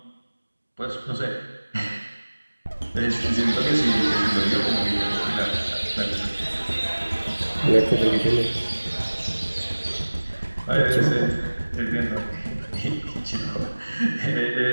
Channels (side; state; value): both; inverted; correlation -1.00